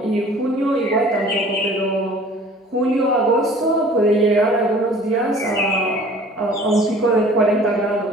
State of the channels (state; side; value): normal; both; correlation 0.49